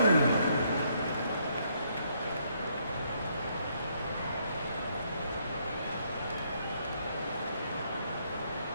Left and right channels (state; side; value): inverted; both; correlation -0.72